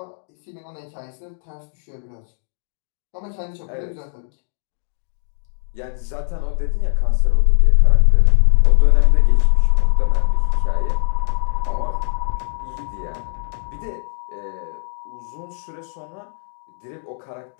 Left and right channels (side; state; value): right; silent; 66 dB below the other